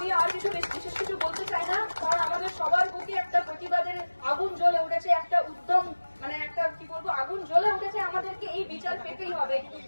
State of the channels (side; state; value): both; inverted; correlation -1.00